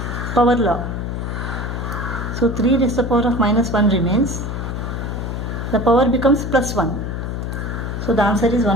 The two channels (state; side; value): noise; left; hum, 4 dB below the sound